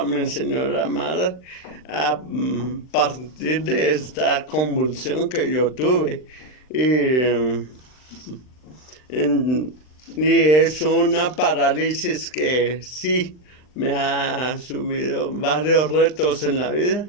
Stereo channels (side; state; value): right; late; 39 ms